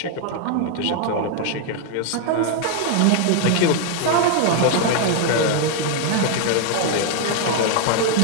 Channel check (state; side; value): different; both; correlation 0.01